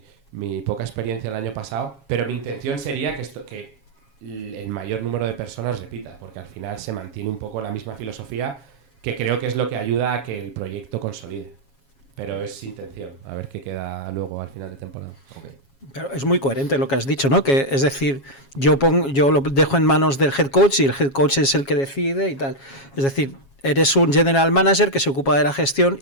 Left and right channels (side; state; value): right; late; 7.3 ms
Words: poca experiencia el año pasado, pero mi intención sería que el mayor número de personas repita, porque al final se mantiene un poco la misma filosofía, que creo que es lo que ayuda a que el proyecto consolide. Pero es intención, a ver qué queda luego al final de temporada. Okay. Pero es muy coherente lo que has dicho, ¿no? Que es decir, yo lo dejo en manos del head coach y el head coach es el que decide y tal. Es decir, eres un general manager que se ocupa de la gestión